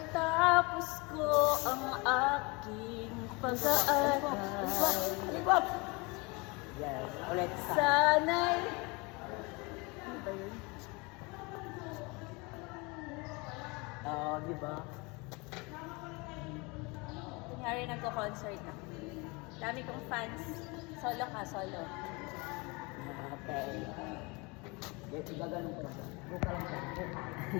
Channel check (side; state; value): right; quieter; 27.4 dB